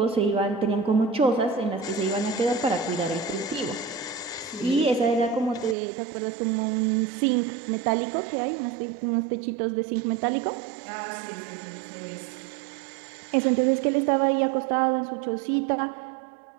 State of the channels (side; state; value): left; drops out; at 5.8 s